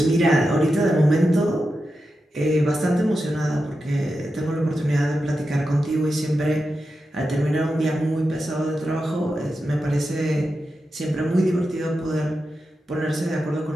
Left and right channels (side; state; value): both; normal; correlation 0.90